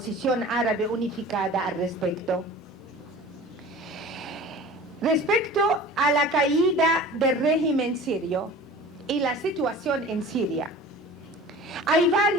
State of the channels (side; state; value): both; normal; correlation 0.41